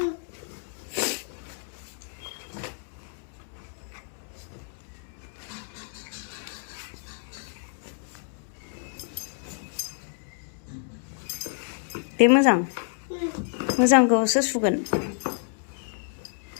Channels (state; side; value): silent; right; digital silence